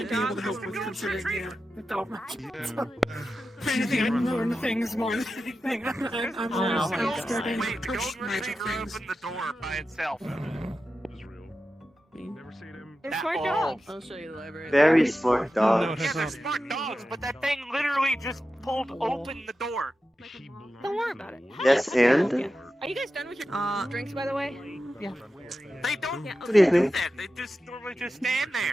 be able to help with considering the dog magic. If anything, I'd learn things more than anything. I'm always starting to Wait, push don't magic really things. open the door by itself. They're smart dogs. I'll show you the library. Very smart dog. Yeah, they're smart dogs, but that thing literally just pulled open the door. Don't worry about it. Yes, and? Are you guys done with your drinks, by the way? Yeah. They don't Yeah, Good evening. do that. They just normally just stand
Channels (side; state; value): both; normal; correlation 0.92